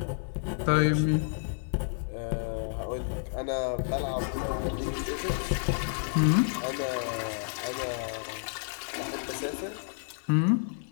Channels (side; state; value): right; silent; 58 dB below the other